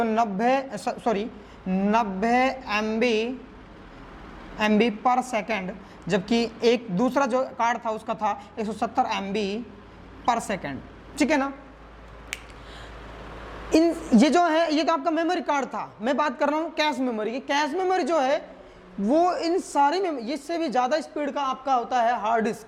90 MB पर सेकंड, जबकि एक दूसरा जो कार्ड था उसका था 170 MB पर सेकंड, ठीक है ना। ये जो है ये तो आपका मेमोरी कार्ड था, मैं बात कर रहा हूँ कैश मेमोरी की। कैश मेमोरी जो है वो इन सारी इससे भी ज़्यादा स्पीड का आपका होता है हार्ड डिस्क,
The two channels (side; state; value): both; identical; correlation 1.00